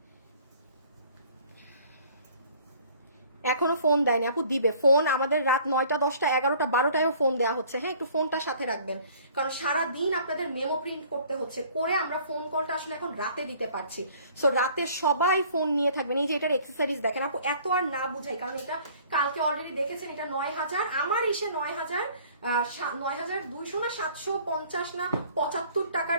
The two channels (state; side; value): inverted; both; correlation -0.54